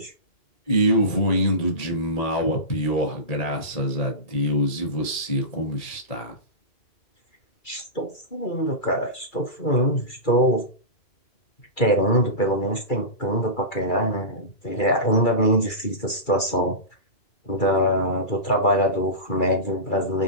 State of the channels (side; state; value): right; late; 2.3 ms